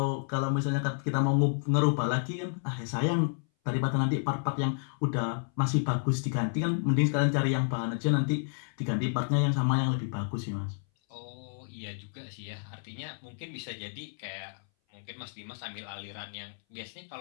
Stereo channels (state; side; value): silent; right; 57 dB below the other